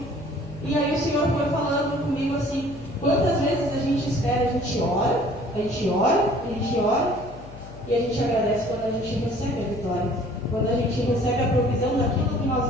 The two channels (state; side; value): noise; left; hum, 16 dB below the sound